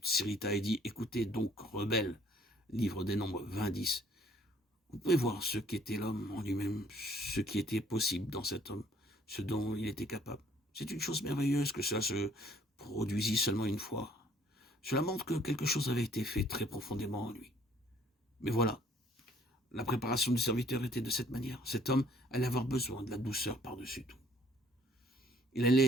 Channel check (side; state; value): both; normal; correlation 0.60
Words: s'irrita et dit « Écoutez donc, rebelles » livre des Nombres 20-10. Vous pouvez voir ce qu'était l'homme en lui-même, ce qui était possible dans cet homme, ce dont il était capable. C'est une chose merveilleuse que cela se produisit seulement une fois. Cela montre que quelque chose avait été fait très profondément en lui. Mais voilà, la préparation du serviteur était de cette manière. Cet homme allait avoir besoin de la douceur par-dessus tout. Il